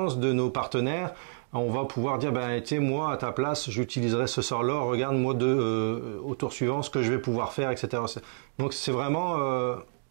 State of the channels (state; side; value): silent; left; digital silence